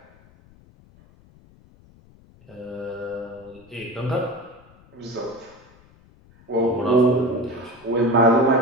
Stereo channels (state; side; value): noise; left; rumble, 27 dB below the sound